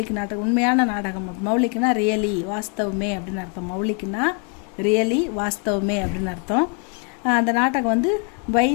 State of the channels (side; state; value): right; quieter; 38.3 dB